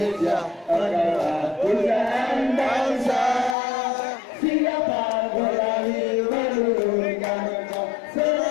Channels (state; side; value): drops out; right; at 3.6 s